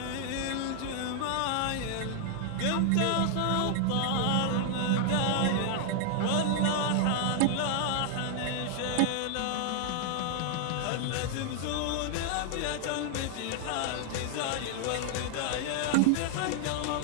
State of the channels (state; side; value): different; both; correlation 0.00